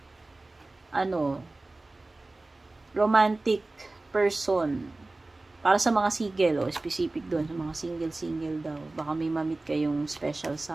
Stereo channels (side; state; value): left; quieter; 3.0 dB